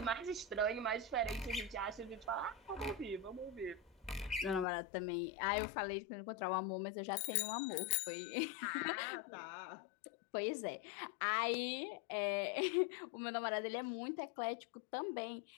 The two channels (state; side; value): drops out; right; at 4.7 s